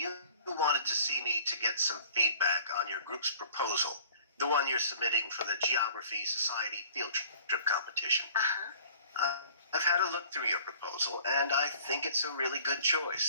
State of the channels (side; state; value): both; inverted; correlation -0.49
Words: wanted to see me to get some feedback on your group's proposal, the one you're submitting for the Geography Society field trip competition. I've had a look through your proposal, and I think it's a really good